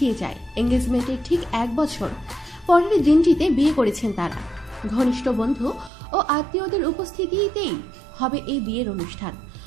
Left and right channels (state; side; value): drops out; left; at 5.9 s